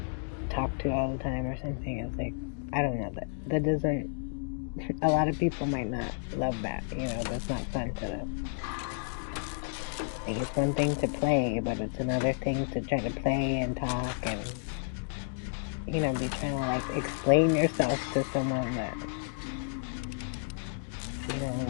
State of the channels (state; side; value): silent; right; digital silence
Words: talk to all the time or something. It's like, I don't know, that doesn't, a lot of people might not love that, that's not fun to them. Like, it's one thing to play, but it's another thing to try to play and talk and, be trying to like explain yourself to someone that,